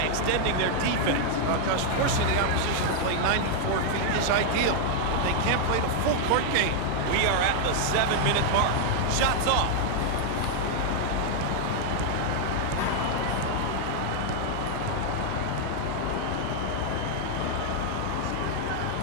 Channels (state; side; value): different; both; correlation 0.00